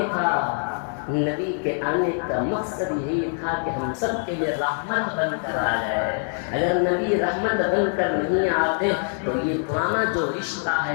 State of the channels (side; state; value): right; silent; 58 dB below the other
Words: کا۔ نبی کے آنے کا مقصد یہی تھا کہ ہم سب کے لیے رحمت بن کر آ جائے۔ اگر نبی رحمت بن کر نہیں آتے تو یہ پرانا جو رشتہ